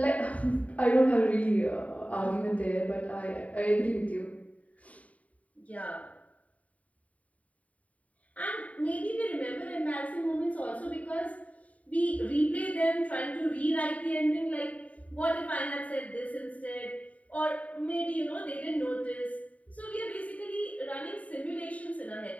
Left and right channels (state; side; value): late; right; 0.069 ms